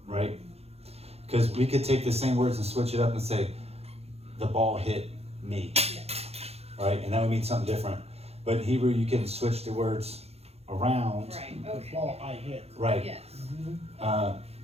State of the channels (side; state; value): left; late; 0.30 ms